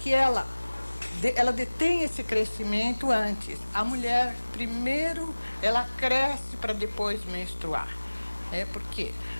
ela detém esse crescimento antes. A mulher, primeiro, ela cresce para depois menstruar. Por quê?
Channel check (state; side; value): inverted; both; correlation -1.00